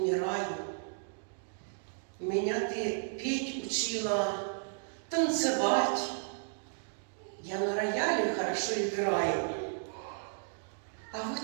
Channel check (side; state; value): left; silent; digital silence